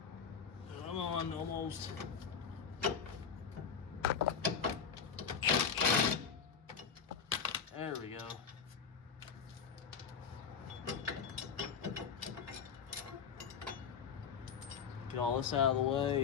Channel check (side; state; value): right; quieter; 6.7 dB